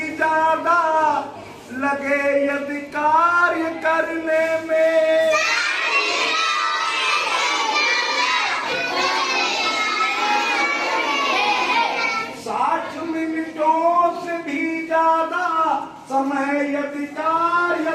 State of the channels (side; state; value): both; identical; correlation 1.00